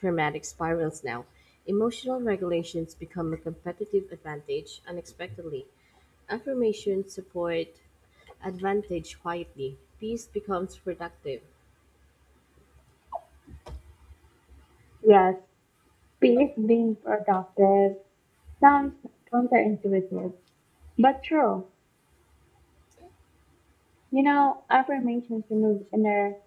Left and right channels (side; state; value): both; identical; correlation 1.00